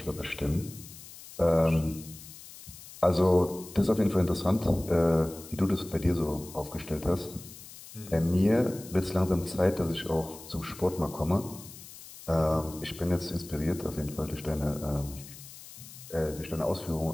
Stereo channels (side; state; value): left; noise; hiss, 16 dB below the sound